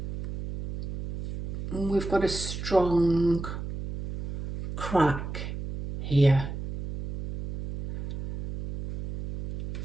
We've got a strong crack here,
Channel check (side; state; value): right; noise; hum, 7 dB below the sound